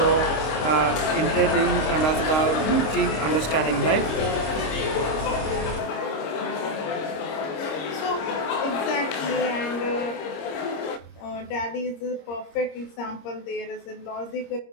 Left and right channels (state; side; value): late; right; 26 ms